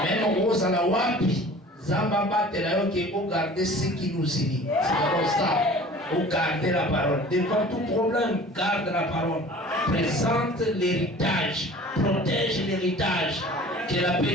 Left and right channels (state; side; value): normal; both; correlation 0.44